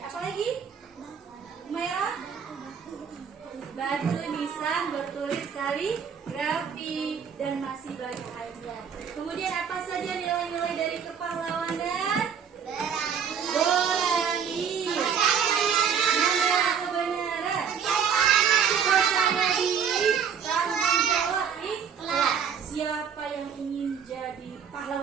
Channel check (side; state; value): left; quieter; 7.3 dB